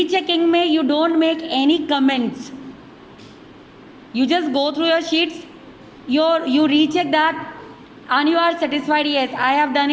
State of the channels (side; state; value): both; identical; correlation 1.00